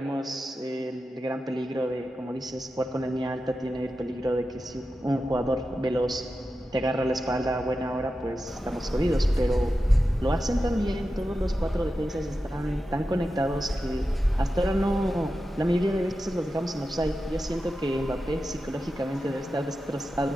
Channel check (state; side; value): normal; both; correlation 0.91